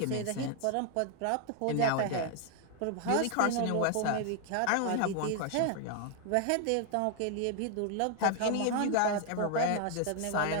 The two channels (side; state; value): both; different; correlation 0.00